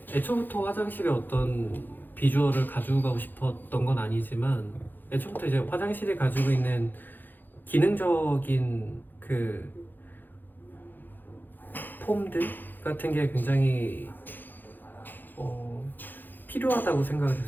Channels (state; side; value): late; right; 0.089 ms